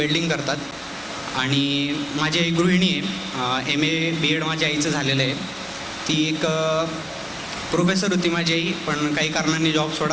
करतात आणि माझी आई गृहिणी आहे. MA BEd माझ्या आईचं झालेलं आहे. ती एक प्रोफेसर होती माझी आई, पण काही कारणांनी जॉब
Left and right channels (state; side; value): identical; both; correlation 1.00